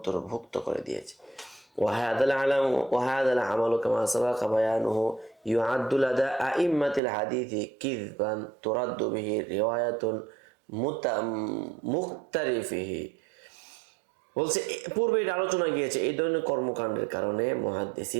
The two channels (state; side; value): drops out; left; at 7.0 s